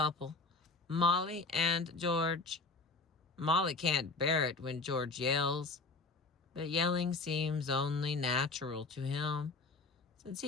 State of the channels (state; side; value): quieter; right; 3.8 dB